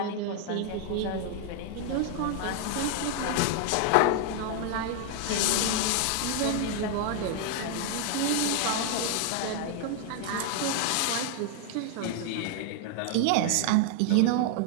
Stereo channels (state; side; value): different; both; correlation 0.00